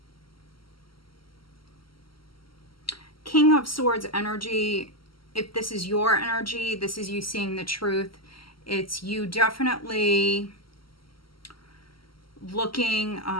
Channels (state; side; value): late; right; 0.74 ms